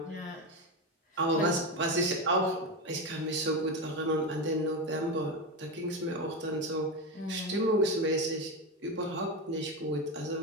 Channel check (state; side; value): normal; both; correlation 0.15